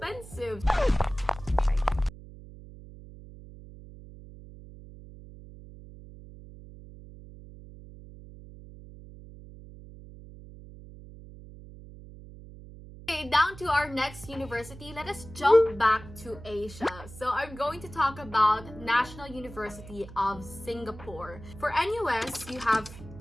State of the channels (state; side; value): noise; right; hum, 16 dB below the sound